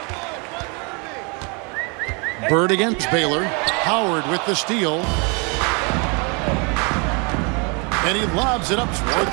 Bird against Baylor. Howard with the steal. And he lobs it up toward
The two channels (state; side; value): quieter; left; 32.7 dB